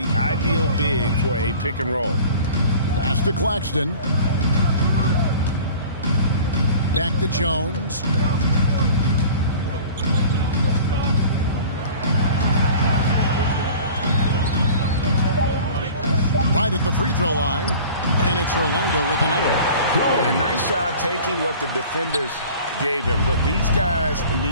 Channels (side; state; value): both; inverted; correlation -0.43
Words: ideal big for a pick and roll. Pass to Claxton. Back to Jones. Right at the free throw line. And it's Orlando with another. And nice job taking what the defenders gave him. But these guys